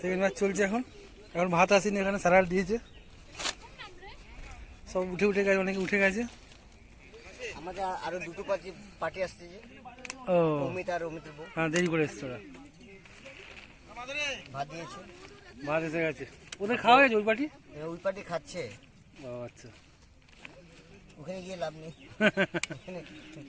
সেকেন্ড ব্যাচ চলছে এখন। এখন ভাত আসেনি, এখানে স্যালাড দিয়েছে, সব উঠে উঠে গেছে, অনেকে উঠে গেছে। আমাদের আরো দুটো পার্টি আসতেছে, ও অমিত আর অমিতের বউ। হ্যাঁ, দেরি করে এসছে ওরা, ভাত দিয়েছে, ভাত এসে গেছে। ওদের খাওয়া গেছে ওই পার্টি? ওই পার্টি খাচ্ছে, ও আচ্ছা। ওখানে গিয়ে লাভ নেই।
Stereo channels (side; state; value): both; identical; correlation 1.00